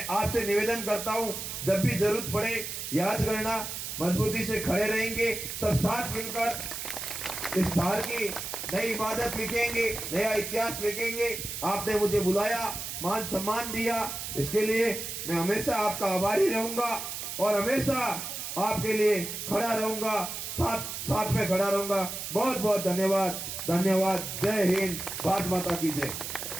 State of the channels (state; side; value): noise; right; hiss, 6 dB below the sound